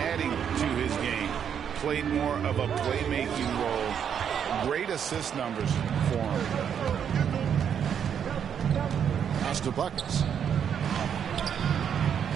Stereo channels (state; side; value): quieter; left; 8.2 dB